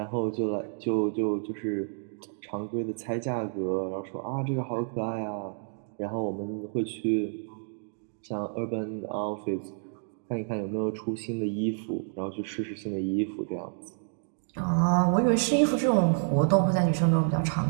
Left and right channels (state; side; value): silent; left; 58 dB below the other